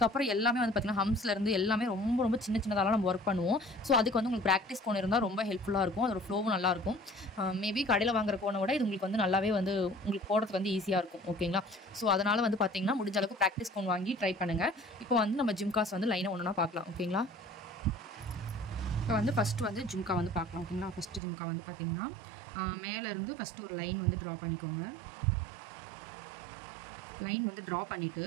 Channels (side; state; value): left; drops out; at 21.2 s